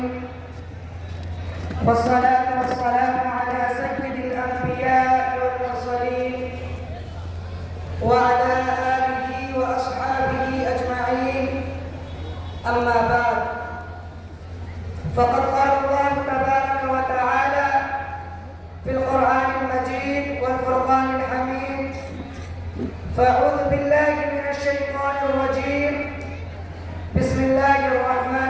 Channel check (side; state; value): both; identical; correlation 1.00